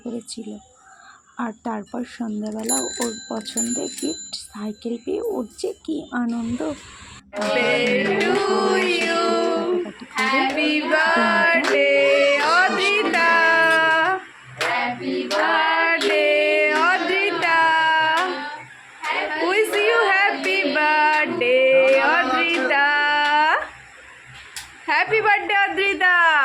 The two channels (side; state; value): both; identical; correlation 1.00